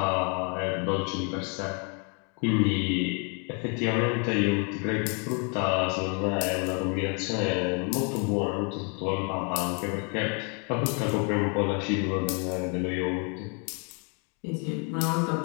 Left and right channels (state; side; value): quieter; right; 36.7 dB